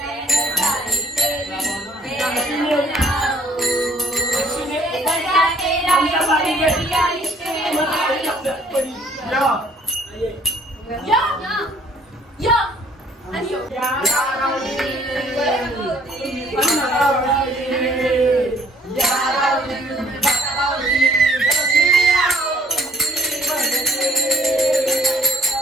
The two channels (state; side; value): normal; both; correlation 0.59